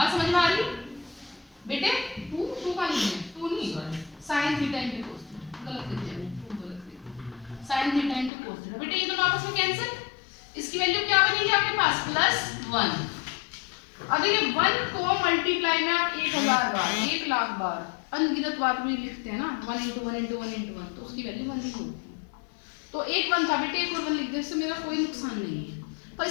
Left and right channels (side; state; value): right; drops out; at 8.3 s